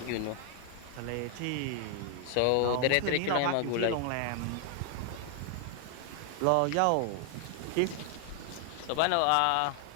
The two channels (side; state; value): both; different; correlation 0.00